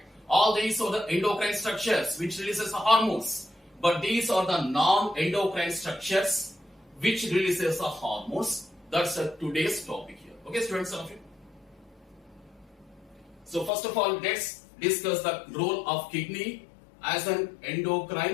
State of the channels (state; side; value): drops out; right; at 13.7 s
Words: All these are the endocrine structures which releases the hormones, but these are the non-endocrine structures which releases the hormones. That's today's topic here. Okay, students, all of you. So first of all, let's discuss the role of kidney as an